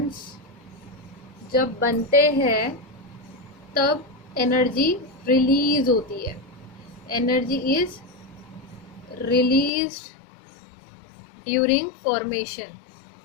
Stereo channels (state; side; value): drops out; right; at 9.7 s